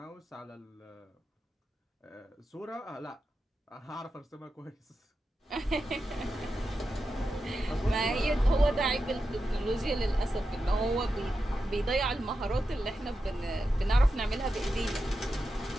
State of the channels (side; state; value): both; normal; correlation 0.89